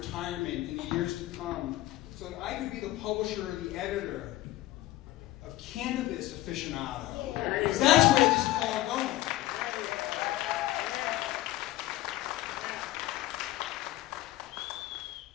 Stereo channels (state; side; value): quieter; right; 15.8 dB